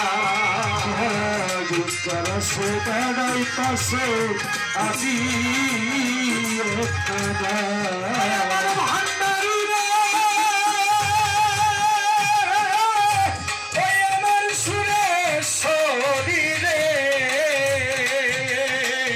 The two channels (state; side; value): identical; both; correlation 1.00